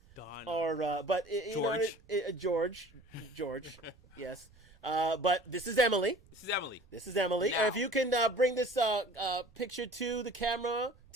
Or but George. Yes. But this is Emily. This is Emily. Now. If you can bring this picture to the camera,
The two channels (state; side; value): noise; right; rumble, 26 dB below the sound